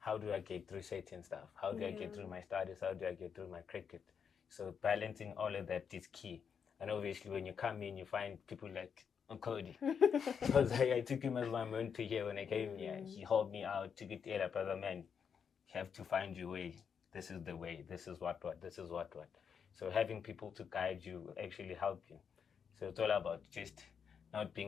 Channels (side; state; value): right; quieter; 6.9 dB